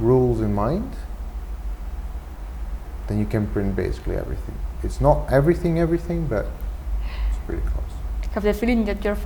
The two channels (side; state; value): both; identical; correlation 1.00